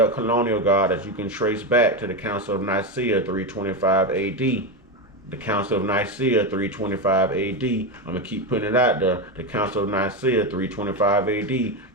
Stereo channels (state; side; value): normal; both; correlation 0.13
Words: colonial god that you can trace back to the Council of Nicaea 325 AD. The Council of Nicaea 325 AD. I'm going to keep putting it out there. The Council of Nicaea 325 AD.